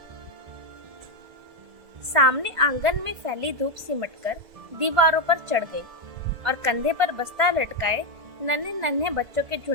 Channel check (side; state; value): left; late; 1.5 ms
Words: सामने आंगन में फैली धूप सिमटकर दीवारों पर चढ़ गई और कंधे पर बस्ता लटकाए नन्हे नन्हे बच्चों के